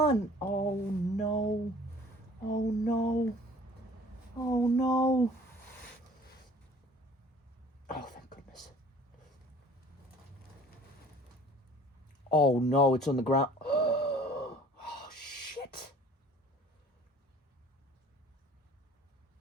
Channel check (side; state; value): both; normal; correlation 0.50